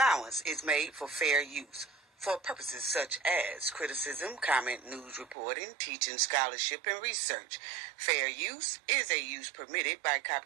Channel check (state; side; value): drops out; left; at 5.4 s